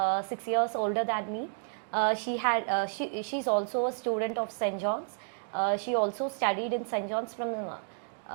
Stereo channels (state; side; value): silent; left; digital silence